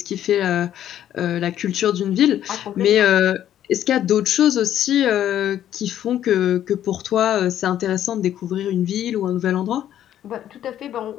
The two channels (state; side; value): quieter; right; 11.2 dB